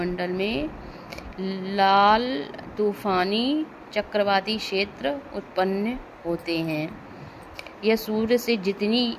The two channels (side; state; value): both; identical; correlation 1.00